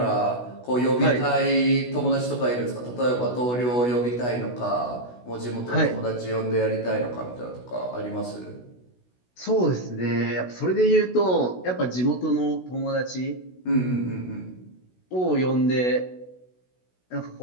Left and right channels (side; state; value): right; late; 16 ms